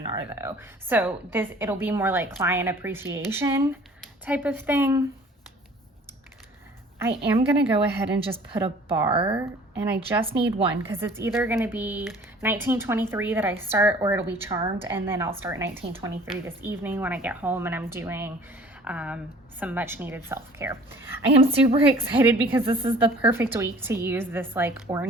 though. So it'll be more like client appreciation type of thing. I am gonna go ahead and just put a bar, and I just need one, because it's either gonna be 1923 that I start, or it'll be Charmed, and then I'll start 1923 this evening when I get home and I'm doing some much needed self-care. I am super excited because this is the perfect week to use this like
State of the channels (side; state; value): both; normal; correlation 0.50